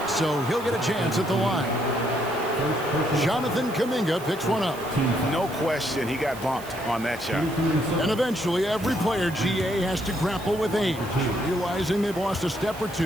so he'll get a chance at the line. Jonathan Kuminga picks one up. No question, he got bumped on that shot. And eventually, every player, GA, has to grapple with age, realizing they've lost a step or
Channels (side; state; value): right; noise; hiss, 17 dB below the sound